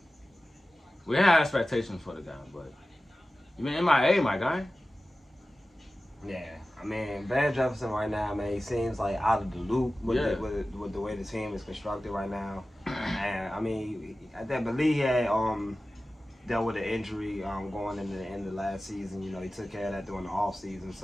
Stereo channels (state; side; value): normal; both; correlation 0.95